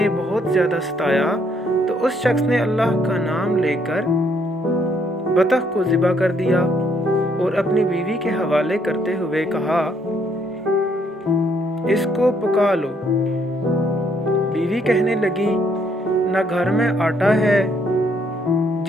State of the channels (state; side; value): normal; both; correlation 0.70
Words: بہت زیادہ ستایا تو اس شخص نے اللہ کا نام لے کر بطخ کو ذبح کر دیا اور اپنی بیوی کے حوالے کرتے ہوئے کہا، اس کو پکا لو۔ بیوی کہنے لگی، نہ گھر میں آٹا ہے